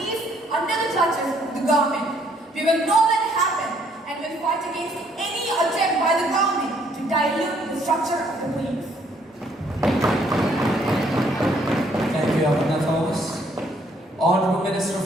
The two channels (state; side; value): normal; both; correlation 0.66